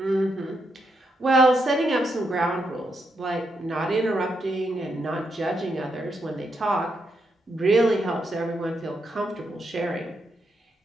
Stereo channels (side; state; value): both; normal; correlation 0.81